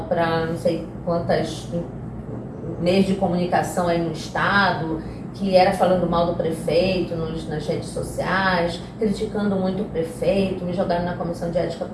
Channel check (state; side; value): identical; both; correlation 1.00